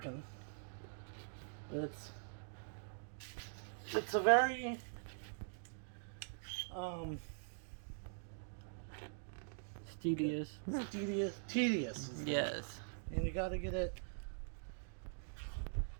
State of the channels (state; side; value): silent; left; digital silence